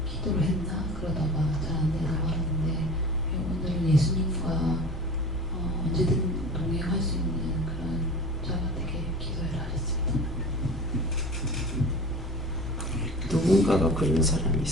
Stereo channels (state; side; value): normal; both; correlation 0.37